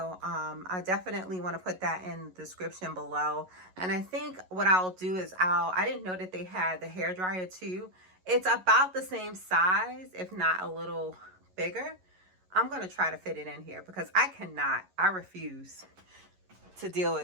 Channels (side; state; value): left; late; 11 ms